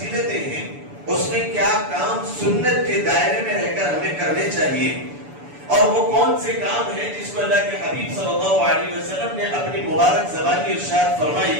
ہیں، اس میں کیا کام سنت کے دائرے میں رہ کر ہمیں کرنے چاہیے، اور وہ کون سے کام ہیں جس کو اللہ کے حبیب صلی اللہ علیہ وسلم نے اپنی مبارک زبانی ارشاد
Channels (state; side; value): late; left; 6.9 ms